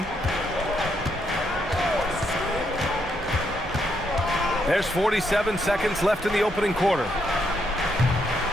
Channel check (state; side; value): normal; both; correlation 0.77